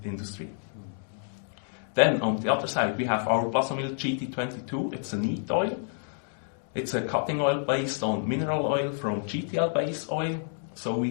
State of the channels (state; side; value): silent; right; digital silence